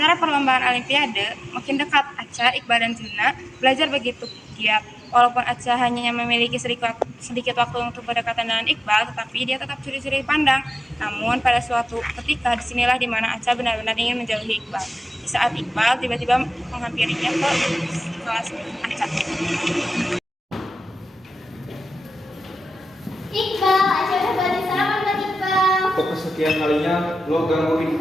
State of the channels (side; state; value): both; normal; correlation 0.95